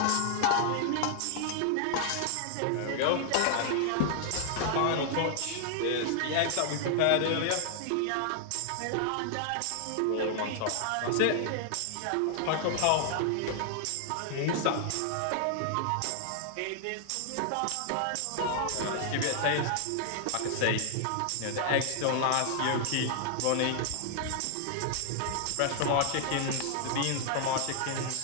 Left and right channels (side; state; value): both; different; correlation -0.01